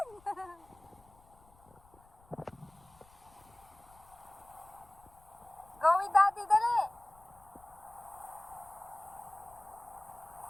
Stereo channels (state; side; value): noise; left; rumble, 27 dB below the sound